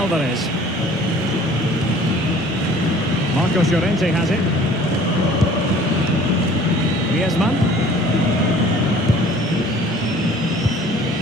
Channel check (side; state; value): both; normal; correlation 0.50